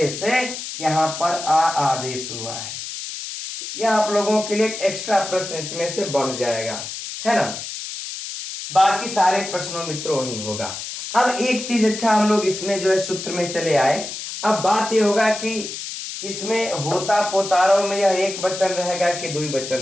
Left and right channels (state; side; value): noise; left; hiss, 8 dB below the sound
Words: से यहां पर आ आदेश हुआ है। यह आप लोगों के लिए एक एक्स्ट्रा प्रश्न इसमें से बढ़ जाएगा, है ना। बाकी सारे प्रश्नों मित्रों वही होगा। अब एक चीज अच्छा हम लोग इसमें जो है सूत्र में चले आए। अब बात यह होगा कि इसमें होता पोतारों में यह एक वचन रहेगा कि दुई वचन